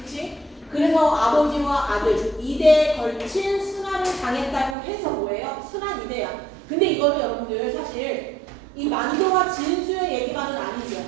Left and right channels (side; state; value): left; drops out; at 4.8 s